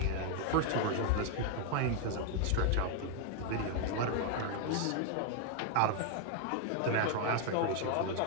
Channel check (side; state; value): both; different; correlation 0.00